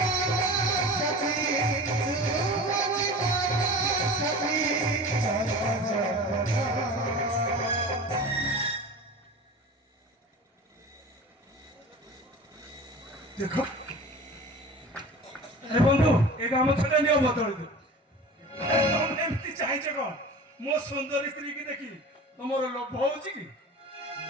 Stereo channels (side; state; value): both; normal; correlation 0.37